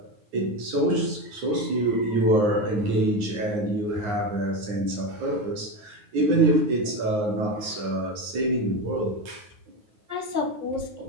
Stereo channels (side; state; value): left; late; 9.7 ms